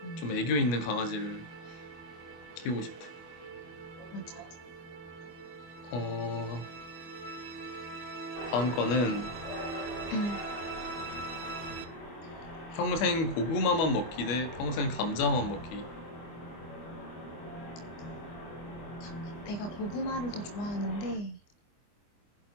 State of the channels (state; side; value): late; right; 24 ms